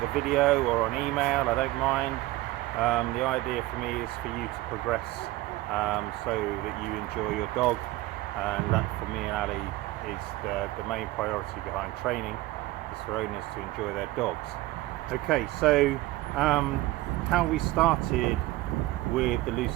video or on email. I don't mind. The idea for me is for you to progress so that you enjoy your dog, and that for me and Ali is the main priority behind training, is for owners to enjoy their dogs. Okay, so how we started with the loose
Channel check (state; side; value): quieter; left; 17.9 dB